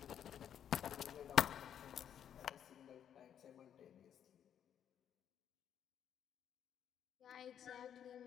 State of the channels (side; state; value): right; quieter; 9.3 dB